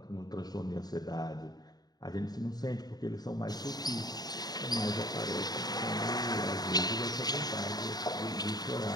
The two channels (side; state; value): right; late; 0.19 ms